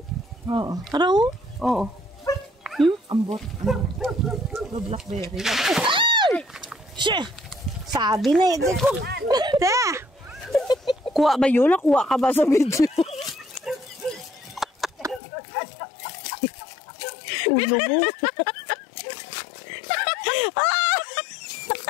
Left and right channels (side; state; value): right; drops out; at 15.2 s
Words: oo. Araw? Oo. Hmm? Ambot. Ano? Blackberry. Siya! Sabi na ito ko. Te! Kuha ba yun? Nakuha ka ba sa video? Ulo mo.